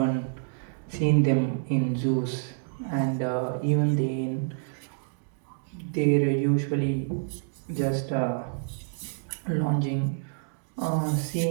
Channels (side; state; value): left; silent; digital silence